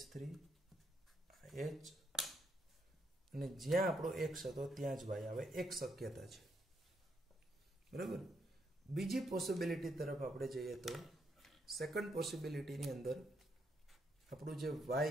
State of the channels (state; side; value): normal; both; correlation 0.76